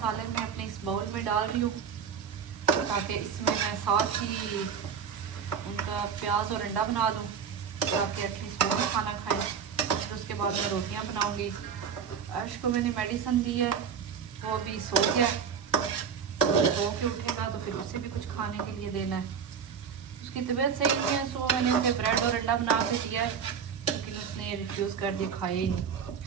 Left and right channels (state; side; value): quieter; left; 7.0 dB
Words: मैं अपने इस बाउल में डाल रही हूँ, ताकि इसमें मैं साथ ही उनका प्याज और अंडा बना दूँ, ताकि एटलीस्ट वो खाना खाएं। फिर उसके बाद मैं रोटियां बनाऊंगी। अर्श को मैंने मेडिसिन दी है, वो अभी सो गया, सो के उठेगा तो फिर उसे भी कुछ खाने के लिए देना है। उसकी तबीयत सही नहीं है, सो मैंने उसे ब्रेड और अंडा बना के दिया है, लेकिन उसने रिफ्यूज़ कर दिया, खाया ही नहीं।